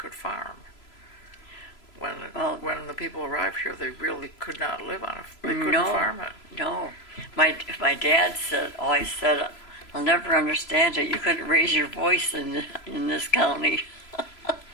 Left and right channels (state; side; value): late; right; 3.0 ms